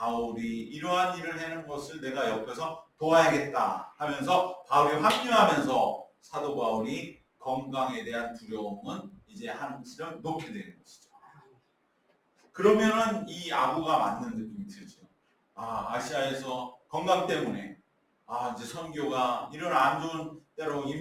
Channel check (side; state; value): both; identical; correlation 1.00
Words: 이러한 일을 하는 것을 내가 옆에서 도와야겠다 하면서 바울이 합류하면서 사도 바울이 건강에 대한 두려움은 이제 한시름 놓게 되는 것이죠. 그러면은 이 아부가 맞는 느낌이 들죠. 아시아에서 건강 때문에 이제 선교가 이런 안 좋은 때로